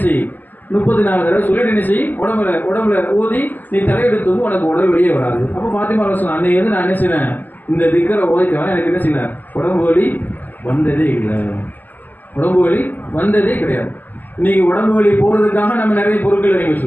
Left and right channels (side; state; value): right; late; 0.085 ms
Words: செய் 34 தடவை சொல்லிட்டு என்ன செய், உடம்புல ஓதி நீ தலையெடுத்து தூங்கும், உனக்கு உடல் வெளியே வராது. அப்போ ஃபாத்திமா சொன்ன அன்னைக்கு வந்து நான் என்ன செய்வேன், இந்த திக்கரை ஓதிக்கலாம், எனக்கு என்ன செய்யல, உடம்பு வலி வந்ததே இல்லை, உடம்பு வலி வந்ததே கிடையாது. இன்னைக்கு உடம்பு வலி போகிறதுக்காக நம்ம நிறைய பொருட்கள் வாங்கி